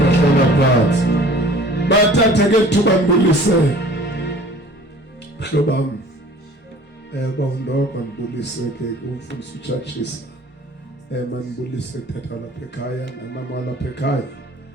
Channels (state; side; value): normal; both; correlation 0.48